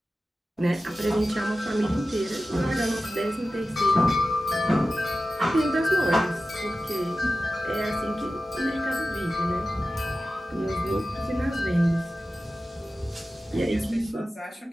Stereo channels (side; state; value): both; normal; correlation 0.94